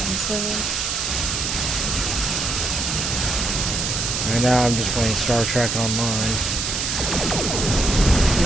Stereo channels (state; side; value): noise; right; hiss, 1 dB below the sound